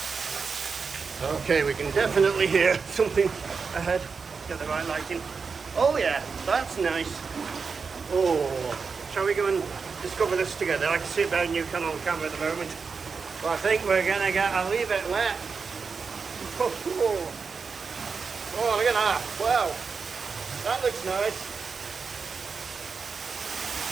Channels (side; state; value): left; quieter; 5.2 dB